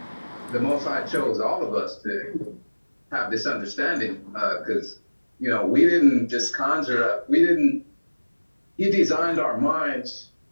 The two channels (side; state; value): both; inverted; correlation -1.00